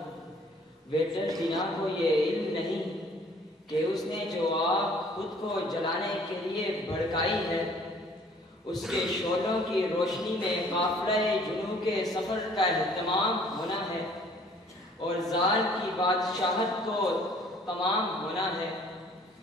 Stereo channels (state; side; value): normal; both; correlation 0.56